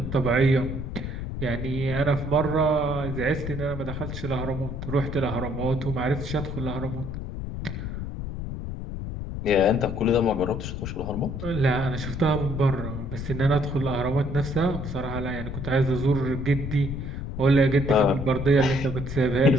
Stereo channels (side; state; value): left; noise; rumble, 6 dB below the sound